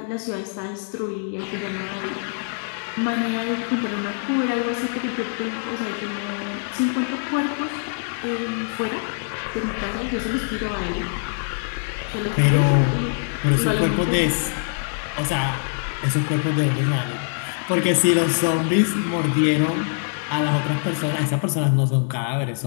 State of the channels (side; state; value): right; silent; 63 dB below the other